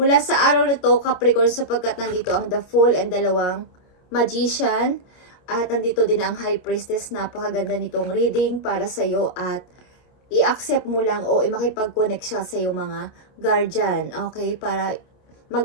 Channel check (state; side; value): late; right; 28 ms